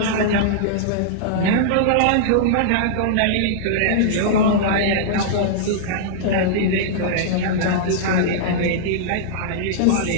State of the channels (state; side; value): different; both; correlation -0.02